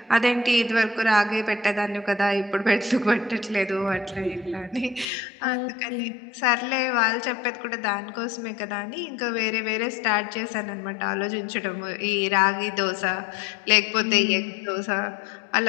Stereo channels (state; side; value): drops out; right; at 5.1 s